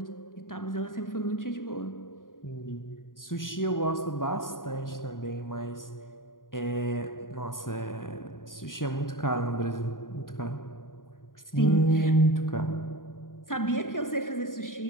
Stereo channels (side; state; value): right; late; 0.90 ms